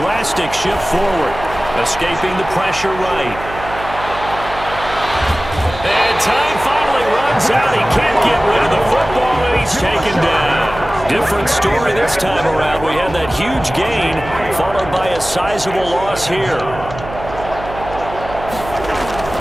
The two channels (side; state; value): right; noise; hum, 12 dB below the sound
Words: shift forward. Escaping the pressure right. And time finally runs out. He can't get rid of the football, and he's taken down. Different story this time around. We had that huge gain, followed by a sizable loss here.